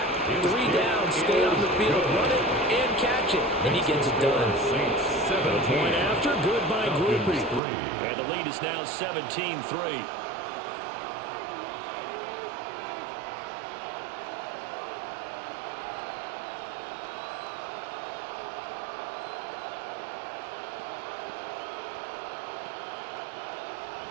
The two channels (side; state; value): left; drops out; at 7.6 s